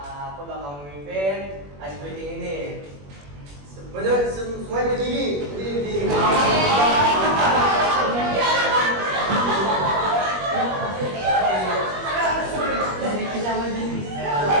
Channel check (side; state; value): left; late; 21 ms